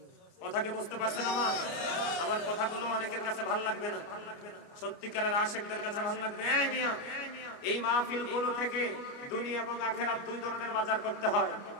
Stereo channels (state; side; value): late; right; 29 ms